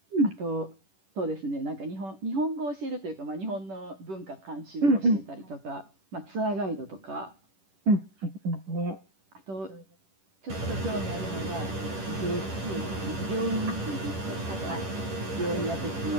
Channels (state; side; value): late; left; 10 ms